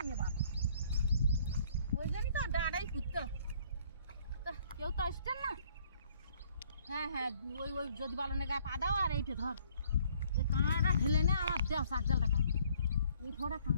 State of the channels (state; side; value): inverted; both; correlation -0.61